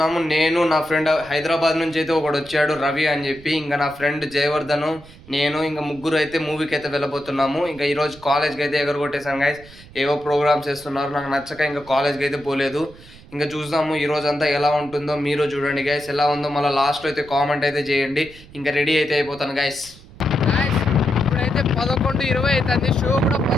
నేను నా ఫ్రెండ్ హైదరాబాద్ నుంచి అయితే ఒకడు వచ్చాడు, రవి అని చెప్పి. ఇంకా నా ఫ్రెండ్ జయవర్ధను, నేను ఇంకా ముగ్గురు అయితే మూవీకి అయితే వెళ్ళబోతున్నాము. ఇంకా ఈరోజు కాలేజ్కి అయితే ఎగరగొట్టేసాను గైస్. ఏవో ప్రోగ్రామ్స్ చేస్తున్నారు, నాకు నచ్చక ఇంకా కాలేజ్కి అయితే పోలేదు. ఇంకా చూద్దాము ఈరోజు అంతా ఎలా ఉంటుందో. మీరు చూడండి గైస్, ఎలా ఉందో మళ్ళీ లాస్ట్లో అయితే కామెంట్ అయితే చేయండి. ఇంకా రెడీ అయితే అయిపోతాను గైస్. ఇప్పుడైతే 11:20 అవుతుంది, షో కూడా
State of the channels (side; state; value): right; noise; rumble, 21 dB below the sound